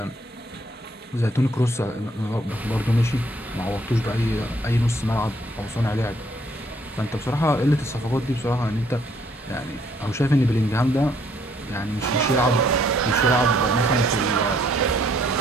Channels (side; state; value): both; normal; correlation 0.66